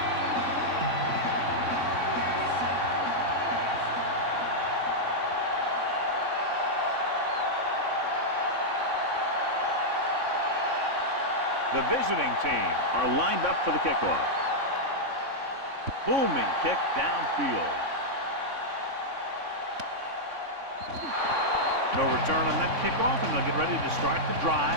The visiting team are lined up for the kickoff. Booming kick downfield. No return on that kickoff, and they'll get ready to start the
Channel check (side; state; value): left; late; 3.6 ms